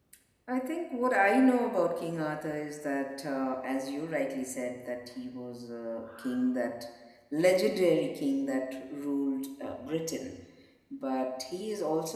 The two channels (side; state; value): both; identical; correlation 1.00